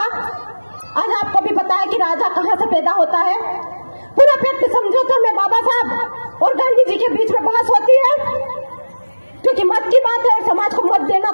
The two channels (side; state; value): both; inverted; correlation -1.00